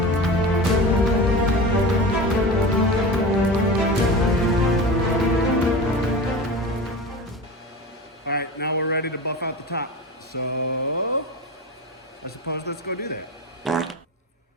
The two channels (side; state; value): both; normal; correlation 0.30